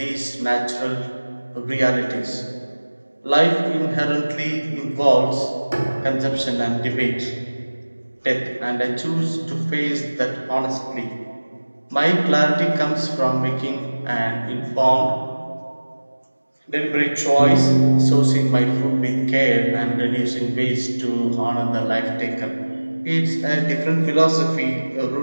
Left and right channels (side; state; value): both; inverted; correlation -1.00